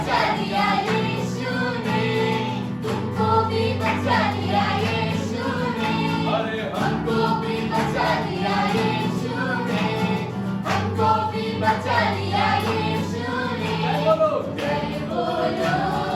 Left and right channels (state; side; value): identical; both; correlation 1.00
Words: लिया यीशु ने, तुमको भी बचा लिया यीशु ने, अरे हमको भी बचा लिया यीशु ने, हमको भी बचा लिया यीशु ने। बोलो जय बोलो,